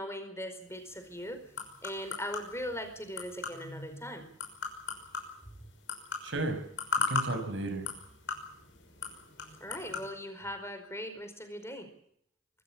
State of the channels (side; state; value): both; normal; correlation 0.33